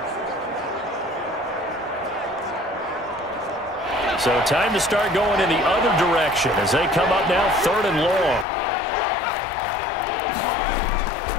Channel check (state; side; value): drops out; right; at 8.5 s